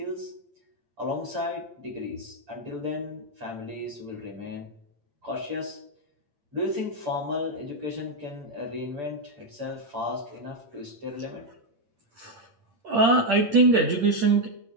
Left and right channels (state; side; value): late; left; 8.7 ms